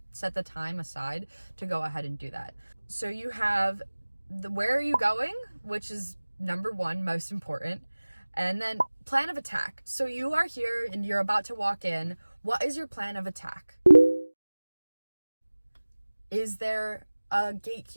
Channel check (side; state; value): both; inverted; correlation -1.00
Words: time aside to go ahead and do that. So you have where are you going, which is number one, most important. And then plan of attack. So you are here and you're about to walk in. What is your plan of attack? Is there a